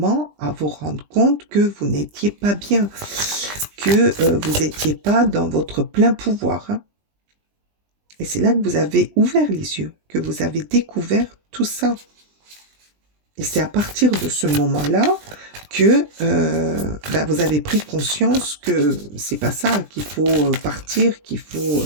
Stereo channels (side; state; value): left; late; 20 ms